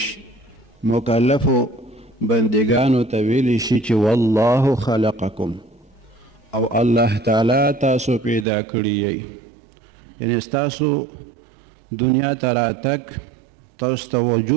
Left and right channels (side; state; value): left; drops out; at 8.5 s